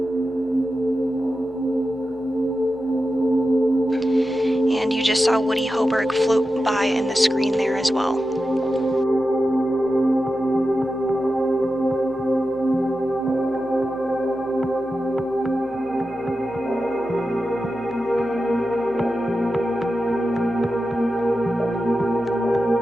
And you just saw Woody Hoberg float by in the screen there as well.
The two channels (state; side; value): normal; both; correlation 0.91